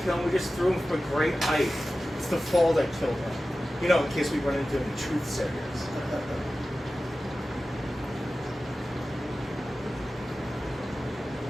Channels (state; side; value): normal; both; correlation 0.95